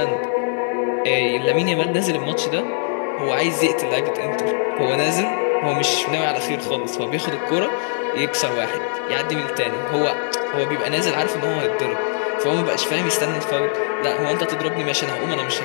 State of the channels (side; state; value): right; silent; digital silence